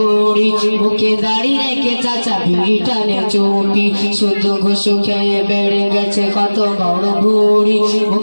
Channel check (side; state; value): both; inverted; correlation -1.00